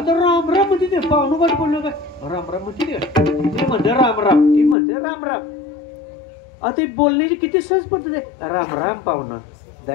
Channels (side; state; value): right; drops out; at 4.8 s